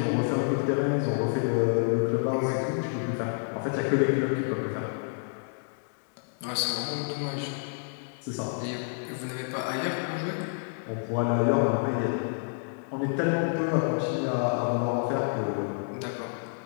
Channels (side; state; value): right; silent; 59 dB below the other